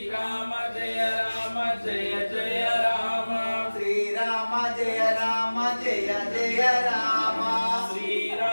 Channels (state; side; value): inverted; both; correlation -1.00